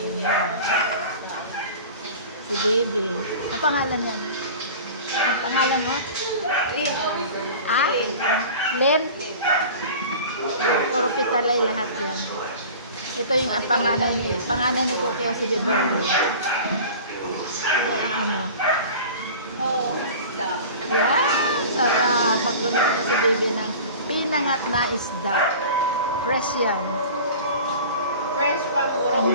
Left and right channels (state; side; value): inverted; both; correlation -0.38